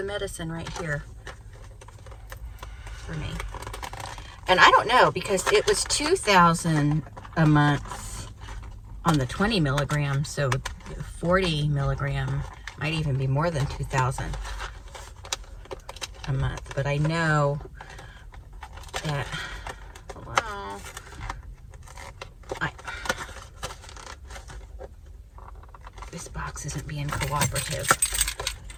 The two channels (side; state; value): both; identical; correlation 1.00